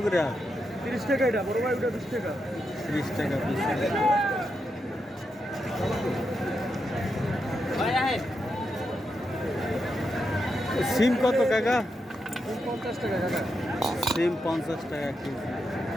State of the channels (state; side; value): normal; both; correlation 0.85